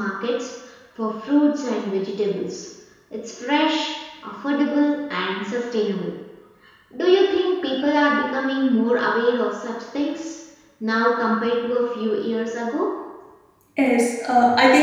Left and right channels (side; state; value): both; identical; correlation 1.00